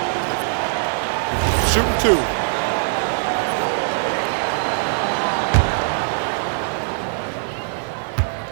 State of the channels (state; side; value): silent; left; digital silence